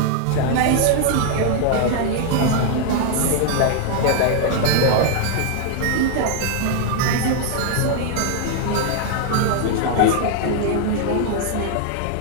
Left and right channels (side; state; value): both; different; correlation 0.00